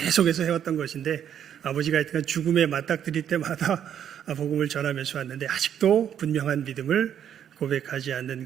해왔던 것인데 아버지가 하여튼 죽음에 맞닥뜨릴 때마다 복음을 전하면서 왔는데 아직도 분명한 믿음을 고백하지 않는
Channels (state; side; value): quieter; left; 9.4 dB